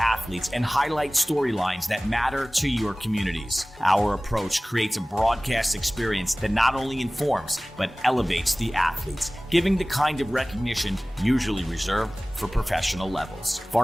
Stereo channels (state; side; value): normal; both; correlation 0.98